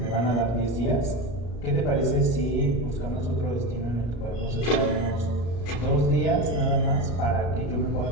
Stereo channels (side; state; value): right; late; 34 ms